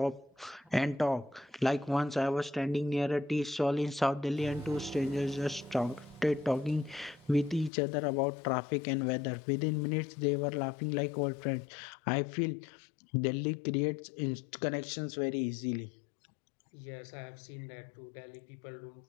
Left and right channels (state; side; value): drops out; right; at 7.7 s